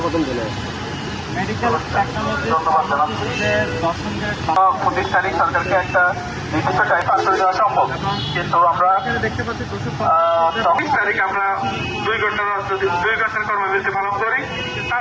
মেডিকেল টেকনোলজি ধন্যবাদ জানাচ্ছি। প্রতিষ্ঠানিক সরকারকে একটা নির্দিষ্ট টাইম পাস করে দেওয়া সম্ভব, কিন্তু আমরা দেখতে পাচ্ছি 24 তারিখ আমরা 2 ঘন্টার কর্মবিরতি পালন করি।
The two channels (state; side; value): identical; both; correlation 1.00